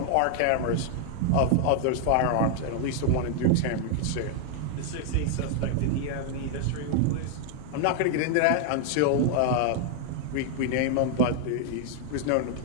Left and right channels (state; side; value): different; both; correlation 0.00